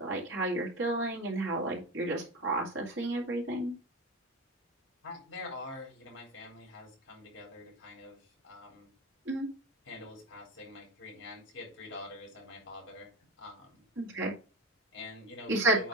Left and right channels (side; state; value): both; normal; correlation 0.23